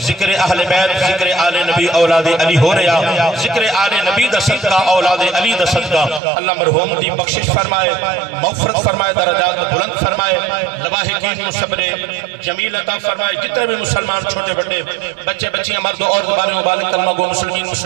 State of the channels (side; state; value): left; drops out; at 6.2 s